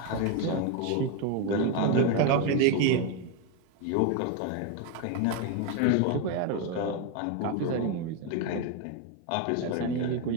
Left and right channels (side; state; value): both; different; correlation 0.02